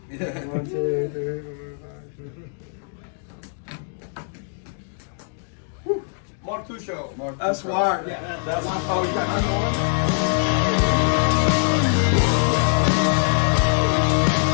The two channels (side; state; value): right; silent; digital silence